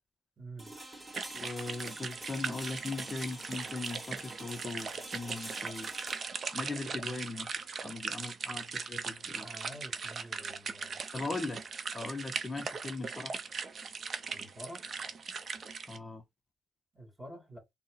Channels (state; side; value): normal; both; correlation 0.83